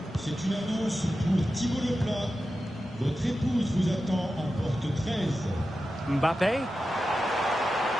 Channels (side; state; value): both; normal; correlation 0.92